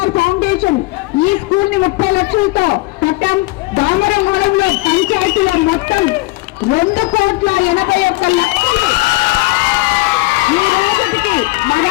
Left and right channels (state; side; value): quieter; right; 22.2 dB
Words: ఫౌండేషన్ ఈ స్కూల్ ని 30 లక్షలతో కట్టాం. దామరమడుగులో పంచాయతీలో మొత్తం 2,81,00,000 ఈ రోజుకి